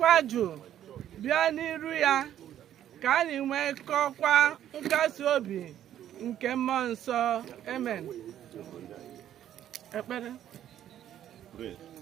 jụụ bịa n'iru ya, ka anyị nwekọkwa nkasi obi nke mmụọ nsọ. Amen. Ekpere.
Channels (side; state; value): left; quieter; 11.1 dB